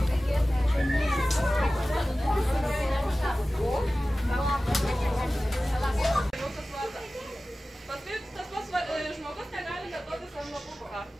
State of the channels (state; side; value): normal; both; correlation 0.96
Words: Žmogus negali neduotis ant lapuko.